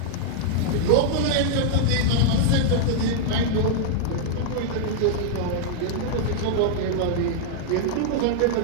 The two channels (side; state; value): both; different; correlation -0.01